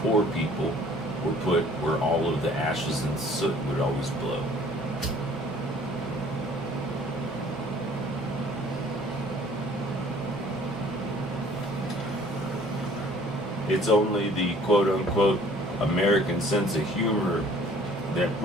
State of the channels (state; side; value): normal; both; correlation 0.54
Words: poor people were put where all of the ashes and soot would always blow. It's only the quote-unquote American sense of humor that